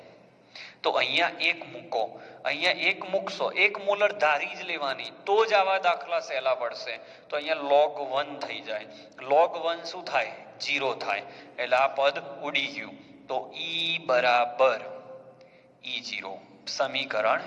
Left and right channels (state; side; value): identical; both; correlation 1.00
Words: તો અહીંયા 1 મૂકો, અહીંયા 1 મૂકશો, 1 મોલર ધારી જ લેવાની, તો જ આવા દાખલા સહેલા પડશે. તો અહીંયા log 1 થઈ જાય. log 1 શું થાય? 0 થાય. એટલે આ પદ ઉડી ગયું. તો E બરાબર E0, સમીકરણ